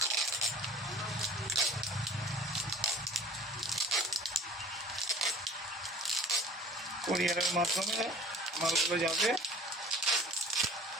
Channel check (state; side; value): normal; both; correlation 0.45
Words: মাধ্যমে মালগুলো যাবে।